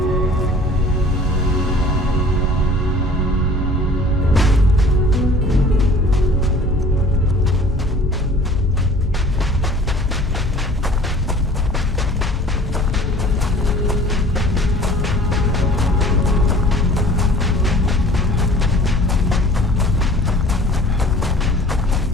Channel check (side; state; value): both; normal; correlation 0.48